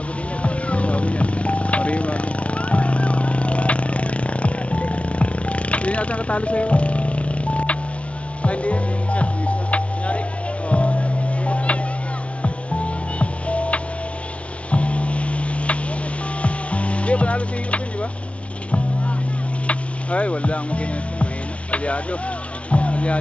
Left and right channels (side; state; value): right; late; 0.062 ms